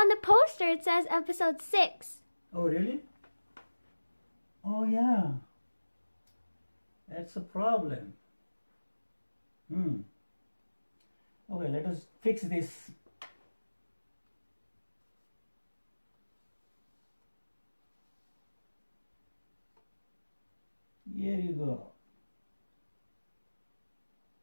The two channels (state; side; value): inverted; both; correlation -1.00